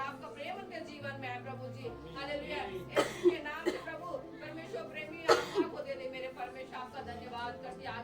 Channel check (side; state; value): both; identical; correlation 1.00